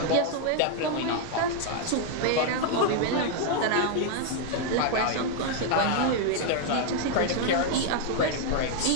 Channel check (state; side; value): different; both; correlation 0.00